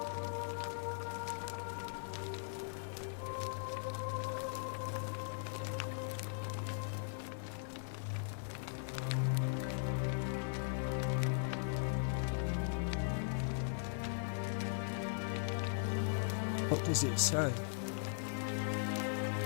What does it say?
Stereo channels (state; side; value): silent; right; digital silence